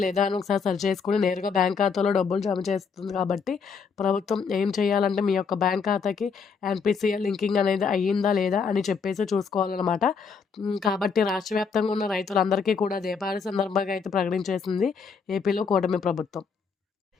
లేదా అని ఒకసారి సర్చ్ చేసుకొని నేరుగా బ్యాంక్ ఖాతాలో డబ్బులు జమ చేస్తుంది కాబట్టి ప్రభుత్వం ఏం చేయాలంటే మీ యొక్క బ్యాంక్ ఖాతాకి ఎన్‌పీసీఐ లింకింగ్ అనేది అయ్యిందా లేదా అని చెప్పేసి చూసుకోవాలన్నమాట. కాబట్టి రాష్ట్ర వ్యాప్తంగా ఉన్న రైతులందరికీ కూడా దీపావళి సందర్భంగా అయితే ప్రకటించేసింది ఏపీలో కూటమి ప్రభుత్వం.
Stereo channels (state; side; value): quieter; right; 5.6 dB